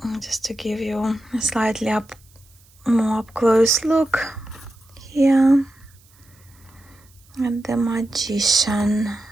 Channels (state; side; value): noise; right; hiss, 30 dB below the sound